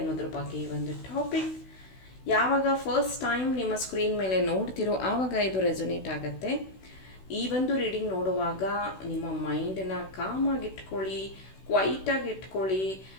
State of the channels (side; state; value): right; late; 16 ms